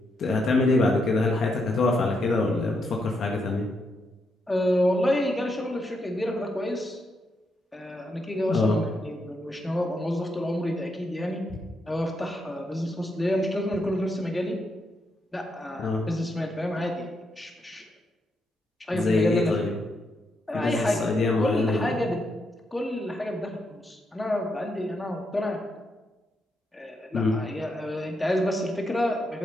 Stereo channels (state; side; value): normal; both; correlation 0.80